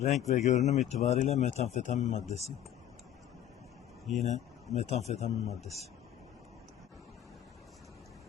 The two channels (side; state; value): right; quieter; 11.1 dB